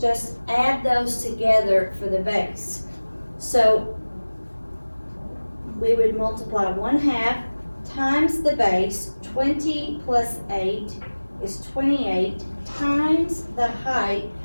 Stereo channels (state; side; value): inverted; both; correlation -1.00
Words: add those together for the base. So we would multiply 1/2 times the base. 20 plus 8 is 28 times the height,